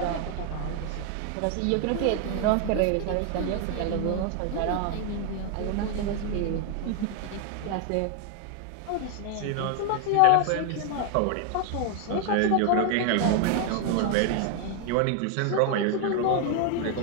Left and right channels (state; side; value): different; both; correlation 0.01